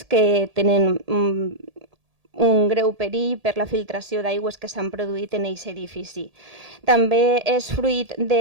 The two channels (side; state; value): left; late; 1.8 ms